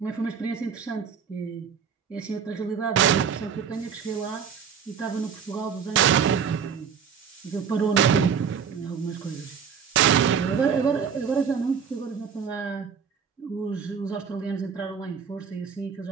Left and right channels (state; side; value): quieter; left; 6.9 dB